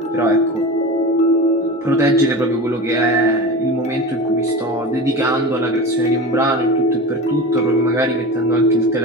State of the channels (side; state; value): both; normal; correlation 0.29